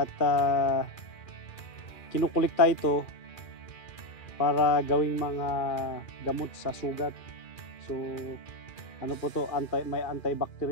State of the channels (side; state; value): right; late; 2.4 ms